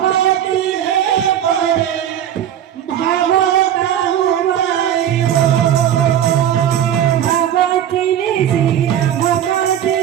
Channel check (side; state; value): left; quieter; 10.3 dB